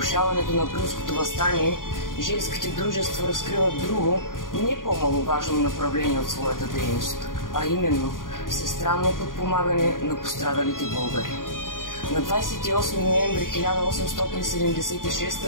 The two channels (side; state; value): right; late; 0.90 ms